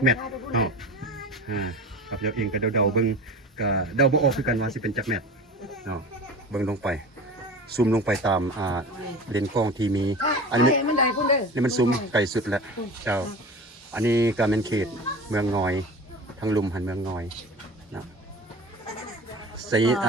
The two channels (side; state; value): both; normal; correlation 0.35